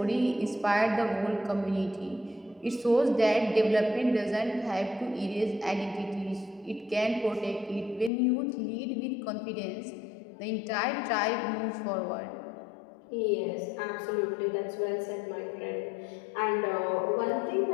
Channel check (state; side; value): drops out; right; at 8.1 s